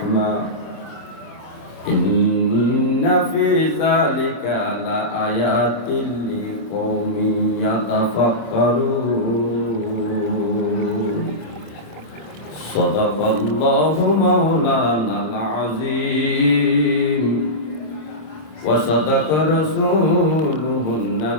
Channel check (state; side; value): late; right; 26 ms